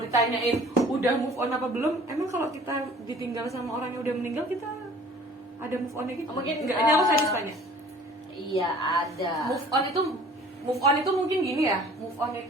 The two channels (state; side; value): normal; both; correlation 0.50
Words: udah move on apa belum, emang kalau kita ditinggal sama orang yang udah meninggal kita ada move onnya gitu? Mungkin enggak. Ini aku sadis tanya. Iya ada. Move on itu mungkin gini ya. Move on